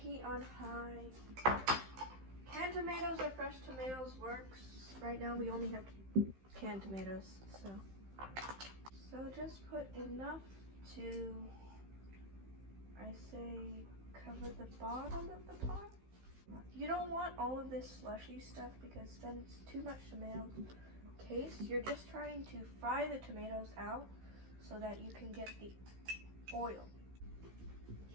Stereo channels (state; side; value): late; left; 15 ms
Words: on high. Canned tomatoes or fresh tomatoes works. Right now we only have canned tomatoes, so just put enough to, I say, cover the bottom of the pot. You don't want all of this slushy stuff because then it's too much tomato taste. You're just trying to fry the tomatoes out so that you can get the oil.